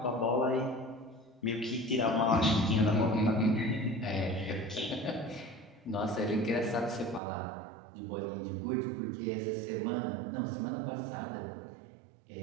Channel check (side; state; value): left; drops out; at 7.2 s